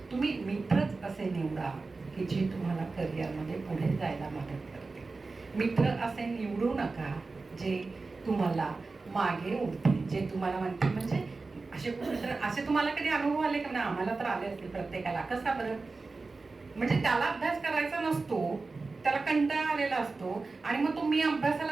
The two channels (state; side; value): quieter; left; 3.8 dB